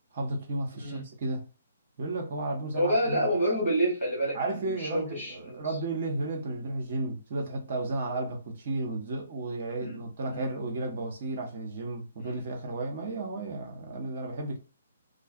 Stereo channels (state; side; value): inverted; both; correlation -0.66